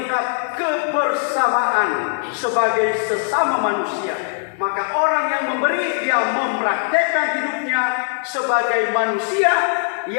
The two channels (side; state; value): right; silent; 66 dB below the other